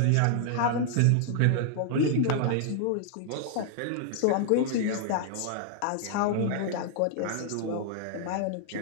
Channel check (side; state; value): both; different; correlation -0.01